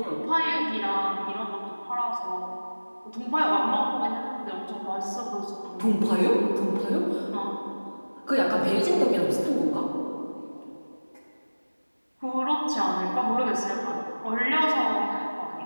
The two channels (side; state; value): both; inverted; correlation -1.00